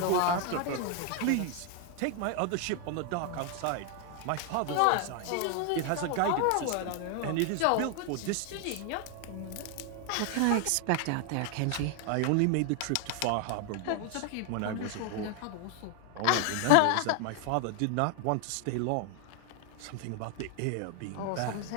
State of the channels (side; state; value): both; different; correlation 0.00